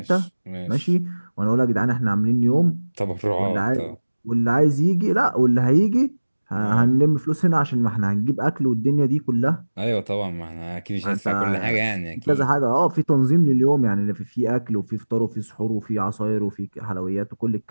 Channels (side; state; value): both; inverted; correlation -1.00